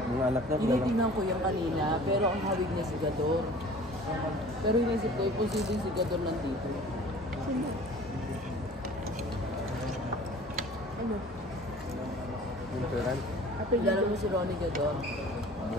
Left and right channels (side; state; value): both; normal; correlation 0.46